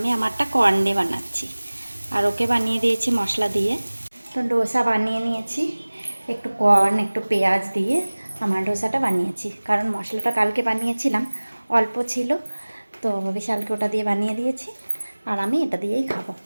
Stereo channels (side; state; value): both; inverted; correlation -1.00